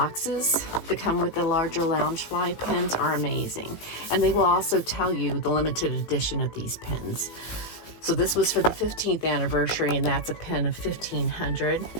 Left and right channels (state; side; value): late; right; 18 ms